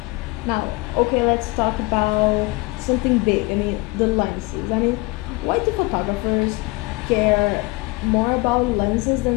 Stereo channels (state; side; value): quieter; right; 23.7 dB